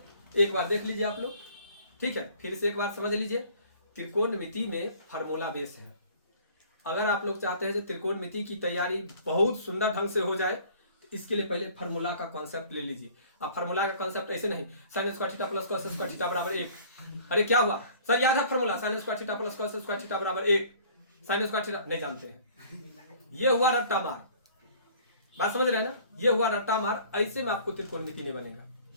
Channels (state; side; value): inverted; both; correlation -0.51